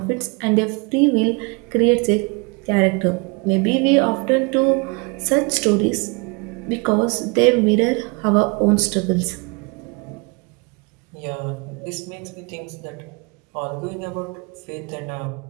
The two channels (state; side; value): quieter; left; 30.4 dB